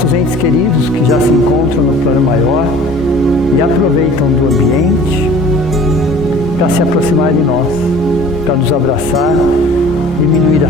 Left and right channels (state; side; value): normal; both; correlation 0.47